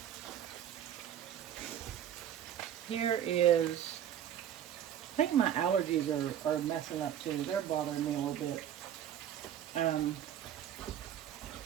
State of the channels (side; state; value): left; quieter; 10.2 dB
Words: Here is, I think my allergies are messing up too. They're bothering me a little bit.